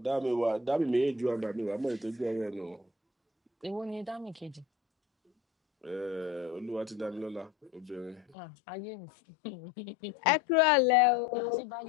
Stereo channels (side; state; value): right; drops out; at 8.3 s